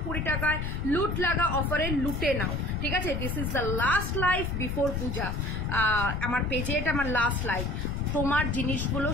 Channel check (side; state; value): left; noise; rumble, 4 dB below the sound